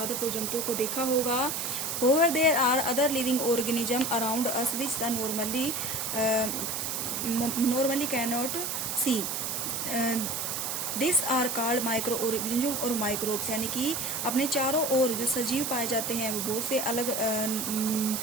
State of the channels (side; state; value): right; noise; hiss, 2 dB below the sound